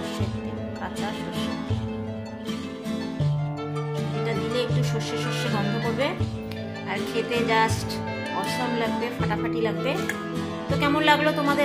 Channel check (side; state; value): both; identical; correlation 1.00